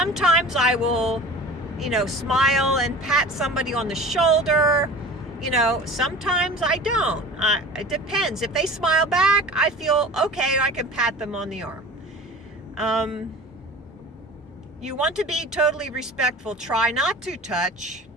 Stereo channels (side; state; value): both; normal; correlation 0.39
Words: I will, smile and pat somebody on the shoulder. Sometimes I don't. It depends. If they smile back, I feel okay, I can pat them on the arm. You want to be totally respectful. Try not to touch.